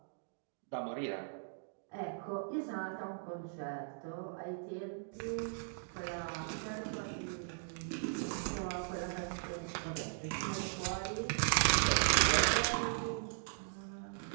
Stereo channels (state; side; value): silent; left; digital silence